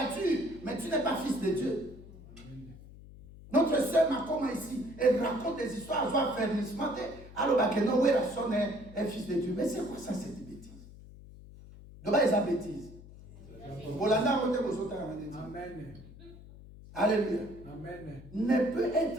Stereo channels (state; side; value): noise; left; hum, 18 dB below the sound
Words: mais tu n'es pas fils de Dieu. Notre sœur Makoma ici, elle raconte des histoires, elle va faire ce matin. Alors, non, oui, la sonne est fils de Dieu. Mais c'est quoi ça, cette bêtise? De bas, ils ont bêtise. Amen. Alléluia. Amen. Ne peut